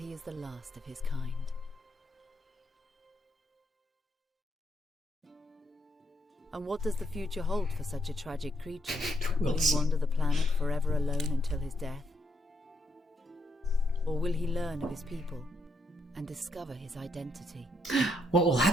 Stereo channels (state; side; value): normal; both; correlation 0.76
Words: is the last of his kind. And what does the future hold for such a tragic creature? Will he wander the planet forever alone until his death? Or will he learn of his people and discover his identity? What will